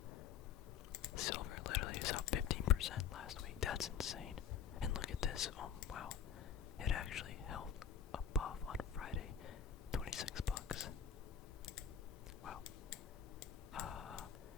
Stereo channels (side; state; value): right; quieter; 8.1 dB